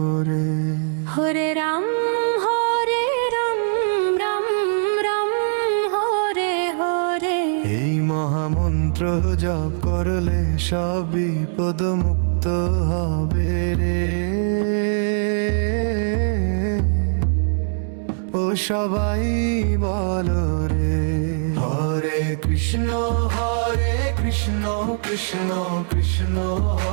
হরে রাম রাম রাম হরে হরে। এই মহামন্ত্র জপ করলে সব বিপদ মুক্ত হবে রে। ও সবাই বলো রে, হরে কৃষ্ণ কৃষ্ণ কৃষ্ণ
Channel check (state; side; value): silent; left; digital silence